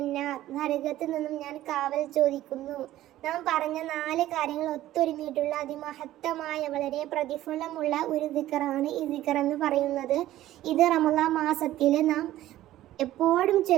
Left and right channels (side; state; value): left; quieter; 14.4 dB